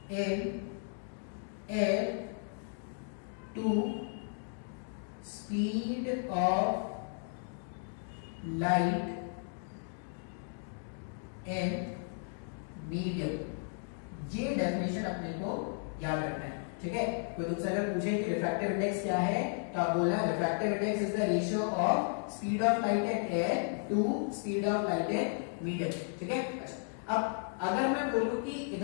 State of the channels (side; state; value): right; silent; 55 dB below the other